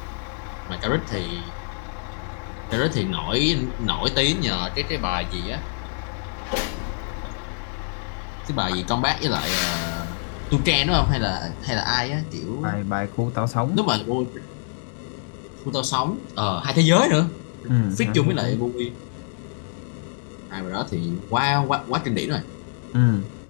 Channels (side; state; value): right; silent; digital silence